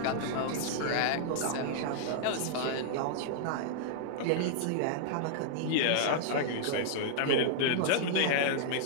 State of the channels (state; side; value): different; both; correlation -0.01